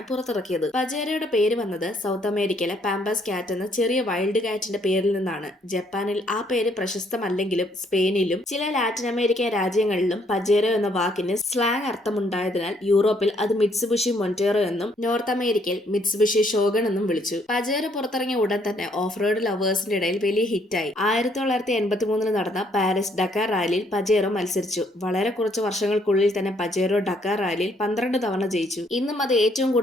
പുറത്തിറക്കിയത്. പജേറോയുടെ പേര് വന്നത് സൗത്ത് അമേരിക്കയിലെ പാമ്പാസ് കാറ്റ് എന്ന ചെറിയ വൈൽഡ് കാറ്റിന്റെ പേരിൽ നിന്നാണ്. ജപ്പാനിൽ ആ പേര് പ്രശസ്തമല്ലെങ്കിലും സ്പെയിനിലും ചില ലാറ്റിൻ അമേരിക്കൻ രാജ്യങ്ങളിലും പജേറോ എന്ന വാക്കിന് സ്ലാങ് അർത്ഥമുണ്ടായതിനാൽ യൂറോപ്പിൽ അത് മിത്സുബിഷി മൊന്റേറോ എന്നും നോർത്ത് അമേരിക്കയിൽ മിത്സുബിഷി ഷോഗൺ എന്നും വിളിച്ചു. പജേറോ പുറത്തിറങ്ങിയ ഉടൻ തന്നെ ഓഫ് റോഡ് ലവേഴ്സിന്റെ ഇടയിൽ വലിയ ഹിറ്റായി. 1983 നടന്ന പാരീസ് ഡക്കാർ റാലിയിൽ പജേറോ മത്സരിച്ചു. വളരെ കുറച്ച് വർഷങ്ങൾക്കുള്ളിൽ തന്നെ പജേറോ ഡക്കാർ റാലിയിൽ 12 തവണ ജയിച്ചു. ഇന്നും അത് ഏറ്റവും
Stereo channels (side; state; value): both; normal; correlation 0.68